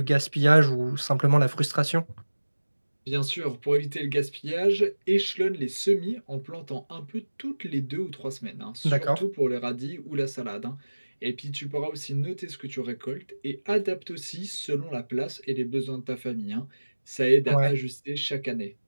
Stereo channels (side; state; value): both; inverted; correlation -1.00